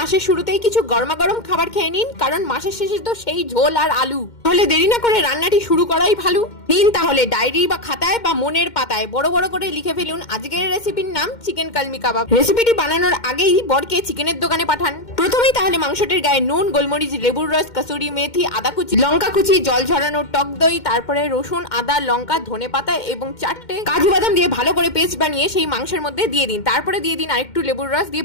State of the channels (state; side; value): late; right; 2.1 ms